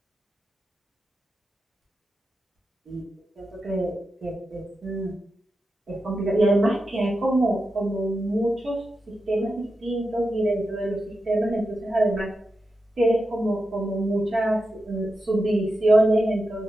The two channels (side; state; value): both; normal; correlation 0.89